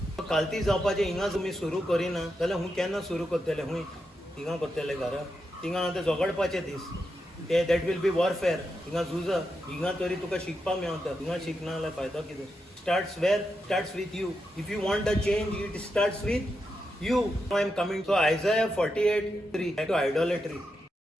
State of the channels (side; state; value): both; normal; correlation 0.86